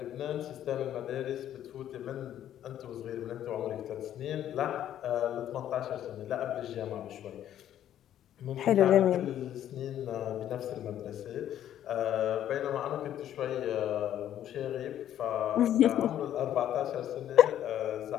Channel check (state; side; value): quieter; right; 11.2 dB